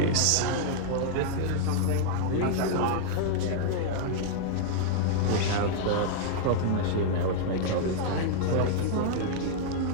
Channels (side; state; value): both; different; correlation -0.01